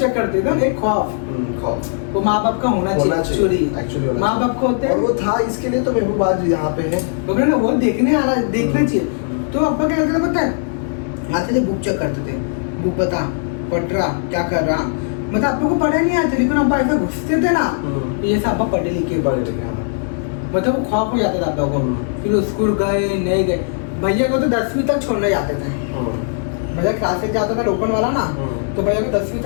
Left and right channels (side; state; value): right; silent; 60 dB below the other